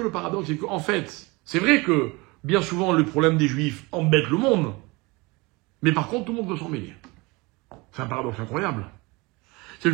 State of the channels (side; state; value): left; quieter; 25.0 dB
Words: le paradoxe, c'est qu'en fait, c'est vrai que bien souvent le problème des Juifs embête le monde, mais par contre tout le monde veut s'en mêler. C'est un paradoxe incroyable. C'est